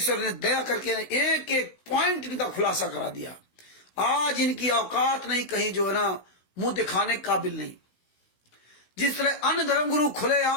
ने दया करके एक एक पॉइंट इनका खुलासा करा दिया। आज इनकी औकात नहीं कहीं जो है ना मुंह दिखाने काबिल नहीं। जिस तरह अन्य धर्म गुरु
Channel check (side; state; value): right; late; 16 ms